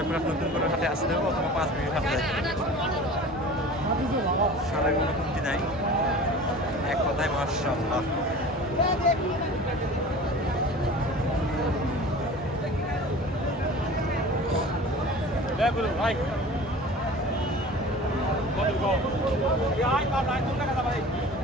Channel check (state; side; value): normal; both; correlation 0.39